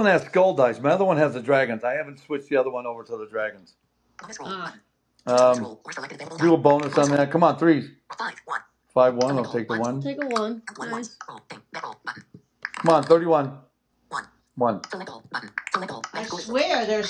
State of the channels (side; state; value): both; identical; correlation 1.00